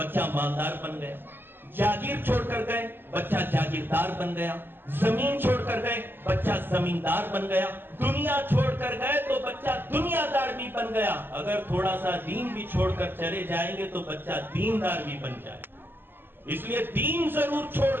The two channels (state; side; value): late; left; 0.098 ms